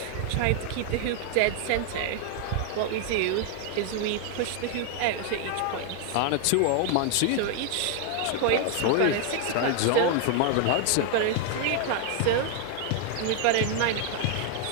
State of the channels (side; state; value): both; different; correlation 0.00